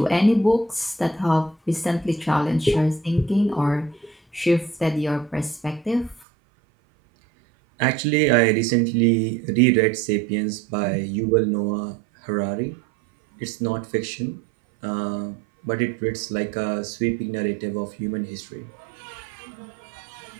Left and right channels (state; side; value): drops out; left; at 6.2 s